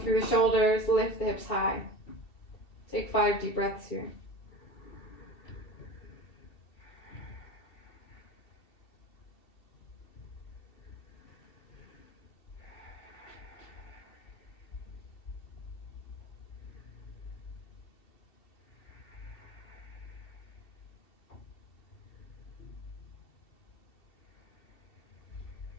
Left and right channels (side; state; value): right; late; 2.7 ms